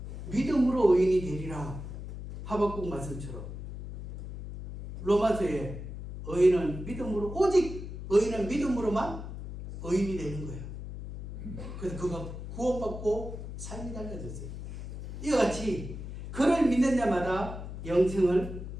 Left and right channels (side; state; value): left; noise; hum, 9 dB below the sound